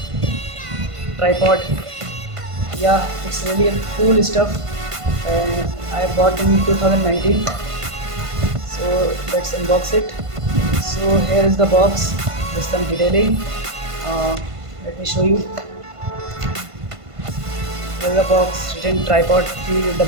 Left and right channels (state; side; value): late; left; 1.5 ms